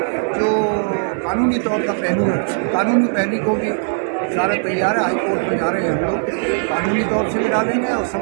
जो कानूनी तौर का पहलू है, कानूनी पहलू को भी सारा तैयार है, हाईकोर्ट में जा रहे हैं हम लोग, कानूनी तौर से भी डालेंगे और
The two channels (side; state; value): left; silent; 67 dB below the other